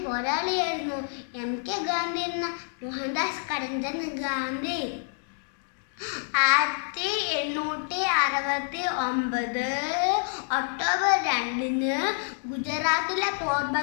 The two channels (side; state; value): right; silent; digital silence